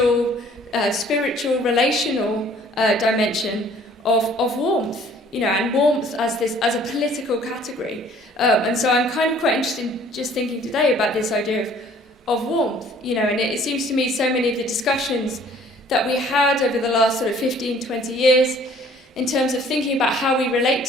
spiritual, relational dimension of warmth, and warmth as a political category. And so I'm kind of quite interested in just thinking today about this idea of warmth, and it seems to me so many of the discussions that we had over the last sort of 15, 20 years in terms of thinking about how we relate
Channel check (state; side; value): normal; both; correlation 0.55